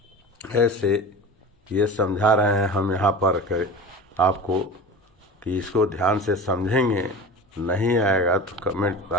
ऐसे ये समझा रहे हैं हम यहाँ पर आपको कि इसको ध्यान से समझेंगे, नहीं आएगा तो कमेंट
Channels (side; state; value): both; normal; correlation 0.33